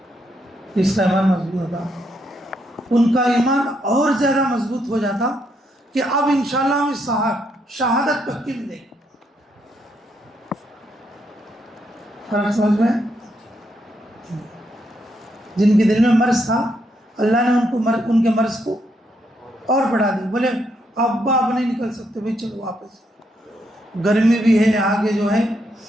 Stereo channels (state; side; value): normal; both; correlation 0.77